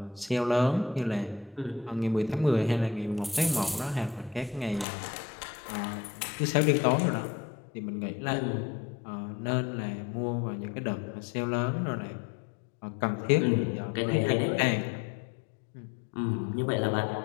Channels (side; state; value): right; drops out; at 4.9 s